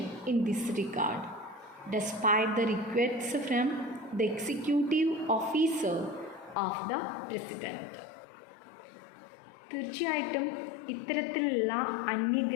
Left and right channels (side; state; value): right; drops out; at 6.6 s